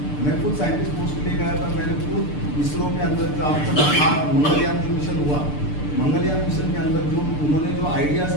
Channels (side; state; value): right; late; 6.8 ms